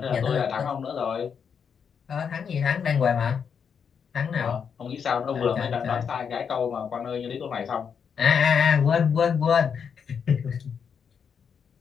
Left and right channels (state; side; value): quieter; right; 6.9 dB